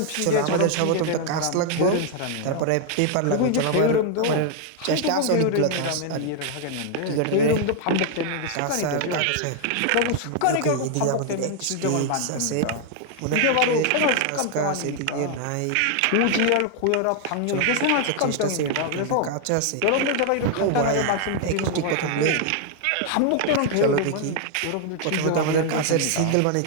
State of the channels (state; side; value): different; both; correlation 0.00